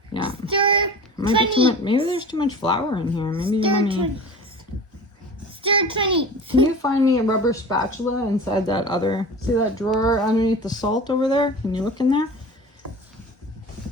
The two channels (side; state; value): both; normal; correlation 0.36